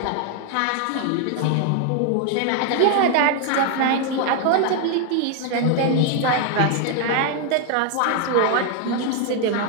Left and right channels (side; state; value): both; different; correlation 0.00